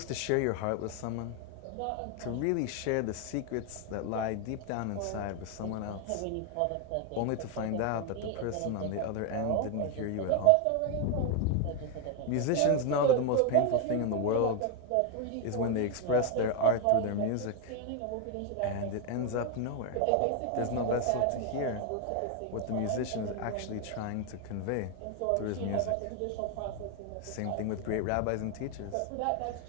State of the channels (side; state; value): both; different; correlation 0.01